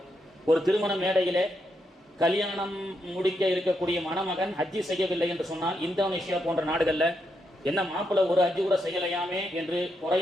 ஒரு திருமண மேடையிலே கல்யாணம் முடிக்க இருக்கக்கூடிய மணமகன் ஹஜ்ஜி செய்யவில்லை என்று சொன்னால் இந்தோனேஷியா போன்ற நாடுகள்ல என்ன மாப்பிள்ளை ஒரு ஹஜ்ஜி கூட செய்யலையாமே என்று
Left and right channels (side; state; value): both; normal; correlation 0.81